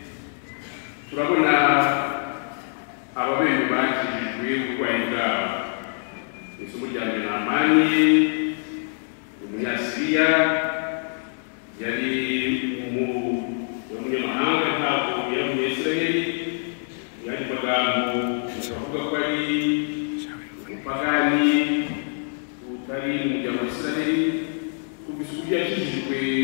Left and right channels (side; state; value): right; silent; 61 dB below the other